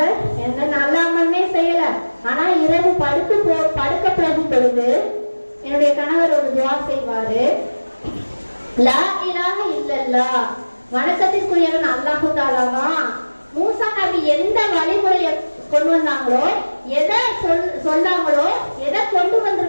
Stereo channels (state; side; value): inverted; both; correlation -1.00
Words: எந்த நல்ல அமல்மே செய்யல, ஆனா இரவு படுக்க போகும் பொழுது என்னுடைய கணவர் ஒரு துவா செய்வாரு, லா இலாஹ இல்லல்லாஹ், வணக்கத்திற்குரியவன் அல்லாஹ் தஆலா தான். மூசா நபி எந்த வழிமுறையை கொண்டு வந்தாங்களோ, எதை சொன்னாங்களோ, எதை கொண்டு